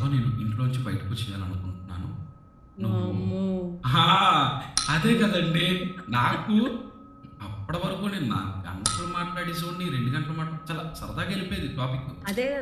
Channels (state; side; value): identical; both; correlation 1.00